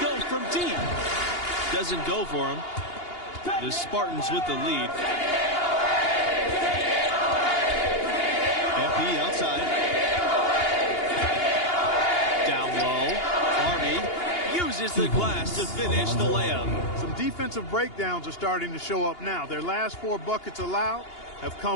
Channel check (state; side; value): late; right; 2.8 ms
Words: from deep. Doesn't go for him. The Spartans with the lead. MP outside. Down low. Harvey raises the glass to finish the layup. Some defensive breakdowns are starting to show up now. Their last 4 buckets allowed have